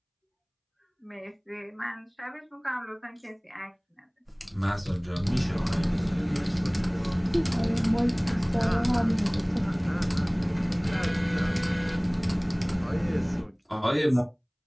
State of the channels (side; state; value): both; identical; correlation 1.00